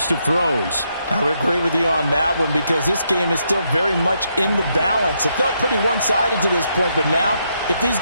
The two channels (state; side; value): inverted; both; correlation -0.78